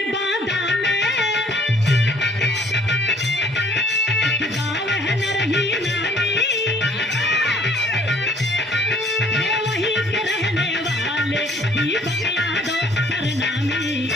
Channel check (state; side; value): normal; both; correlation 0.59